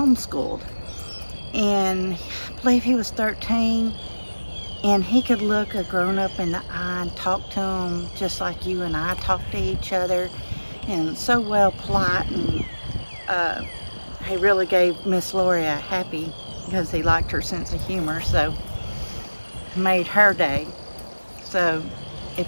And I believe he was 13, and he could look a grown-up in the eye and talk to him just like you and I talk to each other, and so well polite, and he really gave Miss Lori a happy because he liked her sense of humor, so made her day. So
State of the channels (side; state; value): both; inverted; correlation -1.00